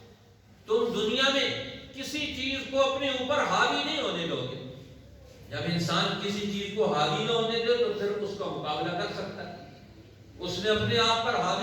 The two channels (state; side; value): identical; both; correlation 1.00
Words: تم دنیا میں کسی چیز کو اپنے اوپر حاوی نہیں ہونے دو گے. جب انسان کسی چیز کو حاوی نہ ہونے دے تو پھر اس کا مقابلہ کر سکتا ہے. اس نے اپنے آپ پر